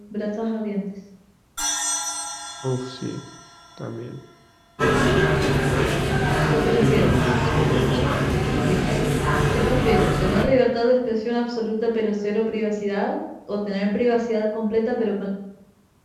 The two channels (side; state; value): both; identical; correlation 1.00